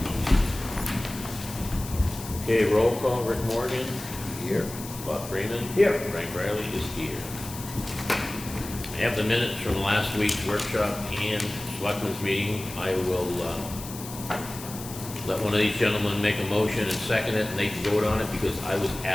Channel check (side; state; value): left; noise; hiss, 12 dB below the sound